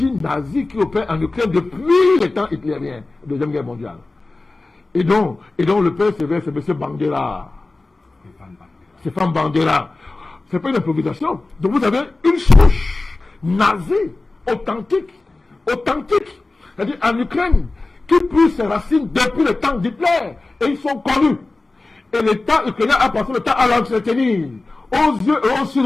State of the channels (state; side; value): quieter; right; 3.2 dB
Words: nazie qui opère en Ukraine depuis les temps hitlériens, Deuxième Guerre mondiale. Et donc le père sévère, c'est M. Bandera. Stéphane Bandera. C'est pas une improvisation. Donc vous avez une souche nazie, authentique. C'est-à-dire en Ukraine, qui pousse ses racines depuis le temps d'Hitler. Et ils sont connus. Et l'État ukrainien a passé le temps à l'entretenir. Aux yeux et aux yeux